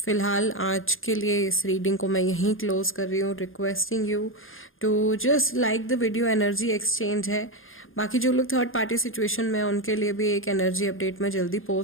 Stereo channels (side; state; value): right; late; 0.59 ms